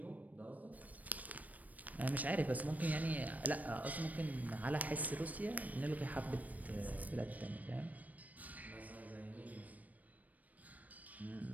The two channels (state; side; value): late; left; 0.075 ms